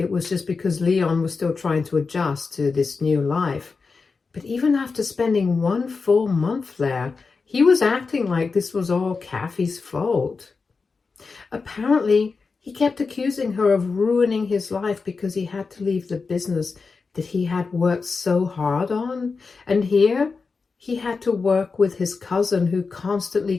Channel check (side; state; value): right; quieter; 4.6 dB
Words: was just because Leon was still trying to adjust to this new life. But even after spending 1 full month there, he was acting like this was all Kathy's fault. Apparently, he kept accusing her of ruining his life because he had to leave the business that he had worked so hard on. And here, he had to work with his cousin who constantly